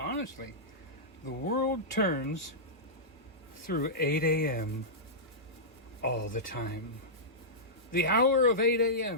the world turns through 8 a.m. all the time. The hour of 8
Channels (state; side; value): normal; both; correlation -0.14